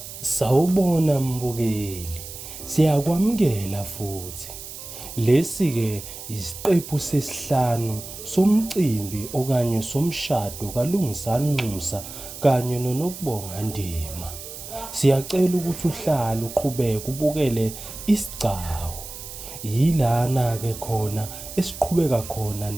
Sawubona mbukeli, siyakwamukela futhi. Lesi-ke isiqephu sesihlanu somcimbi okanye somshado kaLungisani Nxusa kanye noNokubonga Ndima. Siyacela ukuthi uhlale uqhubeke ubukele isigcawu. Yilana-ke khona esiqhubeka khona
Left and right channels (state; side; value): noise; right; hiss, 12 dB below the sound